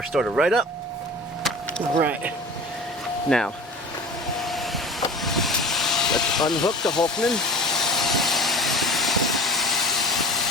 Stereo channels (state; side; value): normal; both; correlation 0.36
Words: started right up. Right. Now, let's unhook the Hulkman.